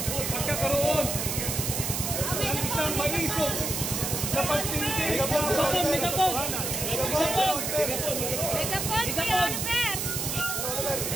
Pagkakaroon ng isang malisong na pagtindi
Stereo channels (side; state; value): right; noise; hiss, 2 dB below the sound